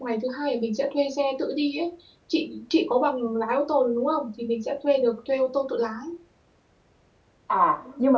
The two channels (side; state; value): both; identical; correlation 1.00